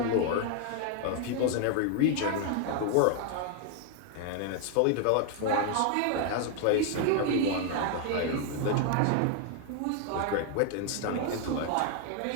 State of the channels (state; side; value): different; both; correlation 0.00